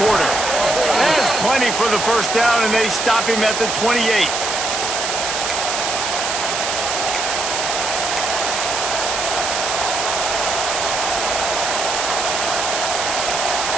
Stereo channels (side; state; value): right; noise; hiss, 2 dB below the sound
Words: Porter. There's plenty for the first down, and they stop him at the 28.